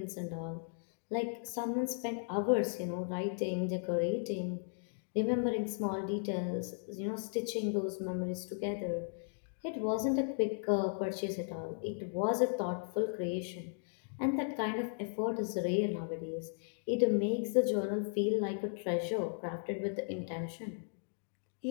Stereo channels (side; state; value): right; silent; digital silence